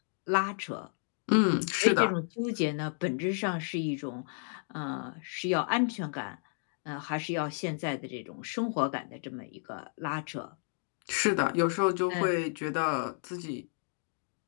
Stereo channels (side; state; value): right; silent; 56 dB below the other